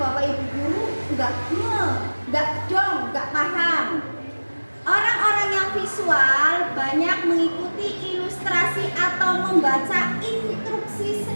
ibu guru, nggak paham. Orang-orang yang visual banyak mengikuti ilustrasi atau membaca instruksi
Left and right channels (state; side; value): inverted; both; correlation -1.00